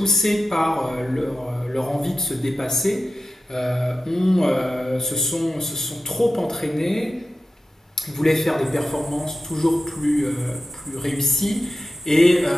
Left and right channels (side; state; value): both; normal; correlation 0.93